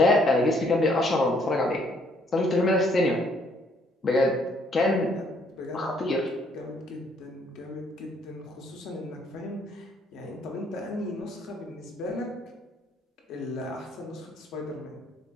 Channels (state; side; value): normal; both; correlation 0.66